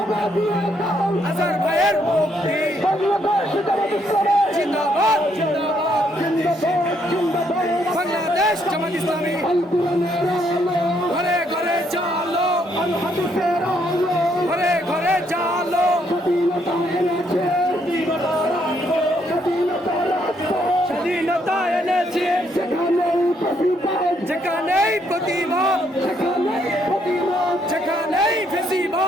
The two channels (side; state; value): both; normal; correlation 0.72